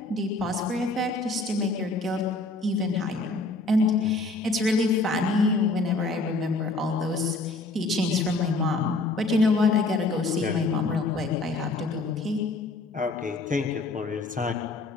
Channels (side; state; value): right; quieter; 3.3 dB